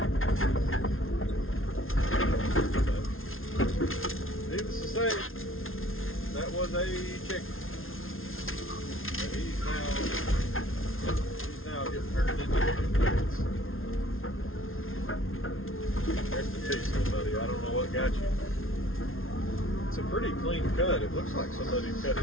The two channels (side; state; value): right; late; 0.61 ms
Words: Needless to say, that was a chicken. And he's now getting turned into chicken. Rest in peace, buddy. I don't know what got you. It's a pretty clean cut. It looks like somebody cut